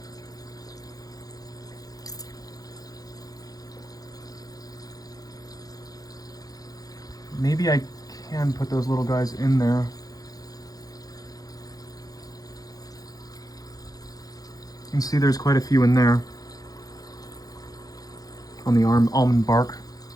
Maybe I can put those little guys in there. You can see there's quite a few in there. On the almond bark.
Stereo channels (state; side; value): late; right; 0.18 ms